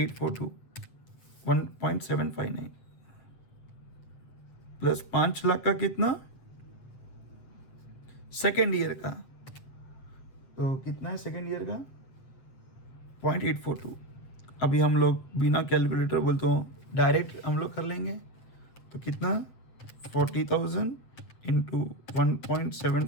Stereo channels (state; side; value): late; right; 7.9 ms